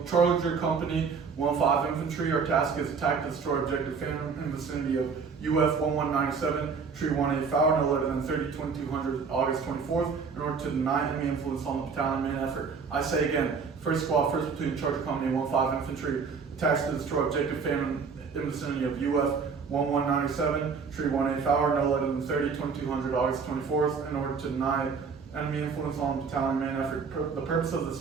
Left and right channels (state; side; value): quieter; left; 5.5 dB